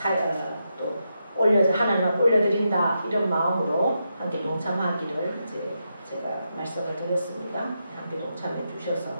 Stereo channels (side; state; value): both; inverted; correlation -0.85